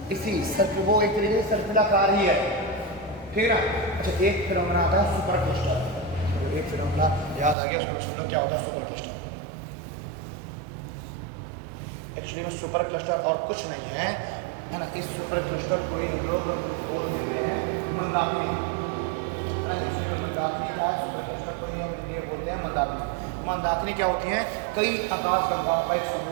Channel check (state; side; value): drops out; left; at 7.6 s